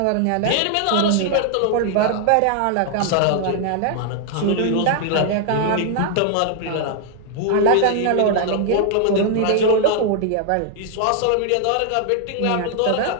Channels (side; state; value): both; different; correlation 0.00